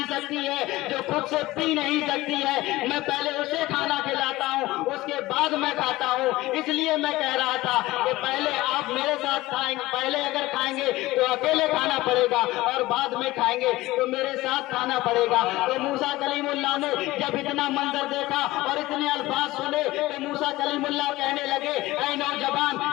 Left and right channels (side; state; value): right; quieter; 18.3 dB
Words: سکتی ہے، جو خود سے پی نہیں سکتی ہے، میں پہلے اسے کھانا کھلاتا ہوں اس کے بعد میں کھاتا ہوں، اس لیے میں کہہ رہا تھا کہ پہلے آپ میرے ساتھ کھائیں گے، پہلے اگر کھائیں گے تو اکیلے کھانا پڑے گا اور بعد میں کھائیں گے تو میرے ساتھ کھانا پڑے گا۔ تو موسیٰ کلیم اللہ نے جب اتنا منظر دیکھا اور اتنے الفاظ سنے تو موسیٰ کلیم اللہ کہنے لگے اے نوجوان،